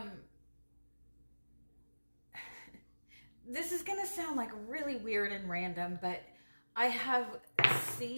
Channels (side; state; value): both; inverted; correlation -1.00